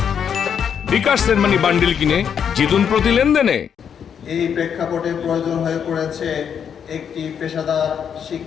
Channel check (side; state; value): right; quieter; 7.8 dB